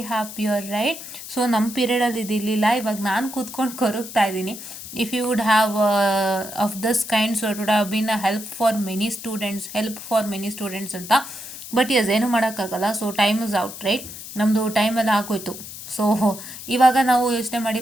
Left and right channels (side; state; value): left; noise; hiss, 12 dB below the sound